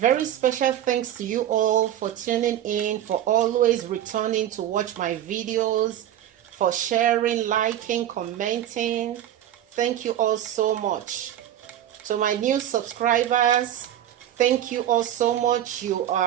special thanks to you all for tuning in, for always returning to watch my videos, for sharing, liking, commenting. Thank you all so much. To my new subscribers, thank you all so much. You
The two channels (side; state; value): left; quieter; 11.6 dB